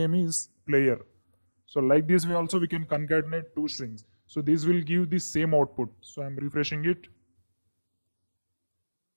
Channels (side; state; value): both; inverted; correlation -1.00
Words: is player. So like this way also we can concatenate two strings. So this will give the same output. So I am refreshing it.